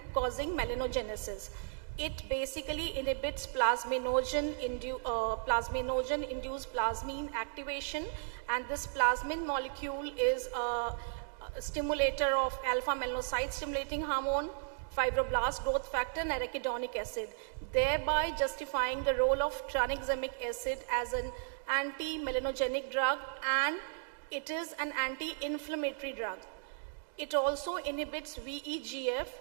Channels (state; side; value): silent; left; digital silence